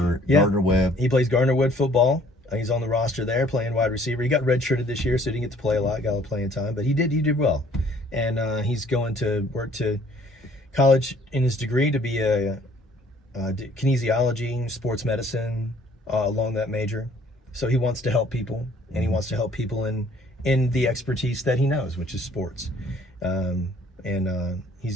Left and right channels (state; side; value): normal; both; correlation 0.58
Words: Yeah. Gardner Webb. He plays Gardner Wood football. He's on the roster there playing wide receiver. He got redshirted this year, so he didn't get to play a lot, got a lot of playing time, but he did well. And he's going to work to college in his degree to be a kinesiology, sports medicine, along that major. So he wants to help people, and he wants to help people in the expertise that he knows, which is sports. He